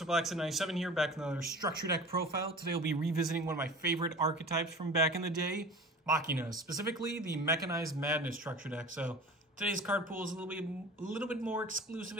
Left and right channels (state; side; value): normal; both; correlation 0.37